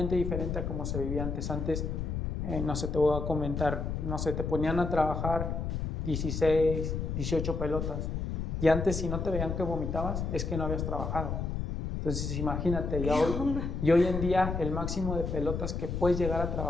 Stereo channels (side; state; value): left; noise; rumble, 3 dB below the sound